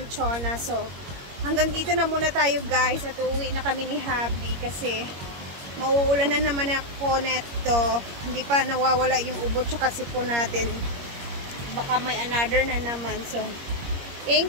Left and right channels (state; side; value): late; left; 21 ms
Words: Chona. So, hanggang dito na muna tayo guys at uuwi na kami ni Habi kasi mauulan na naman ako neto. Hindi pa nawawala yung ubo tsaka sipon natin. Baka may another na naman. So,